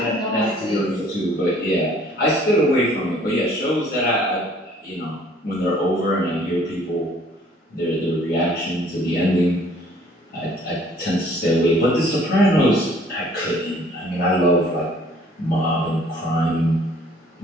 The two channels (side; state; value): both; normal; correlation 0.57